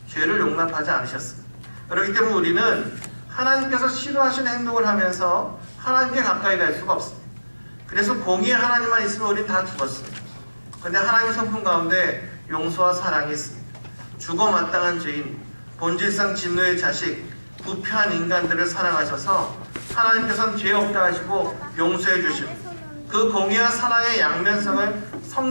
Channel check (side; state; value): both; inverted; correlation -1.00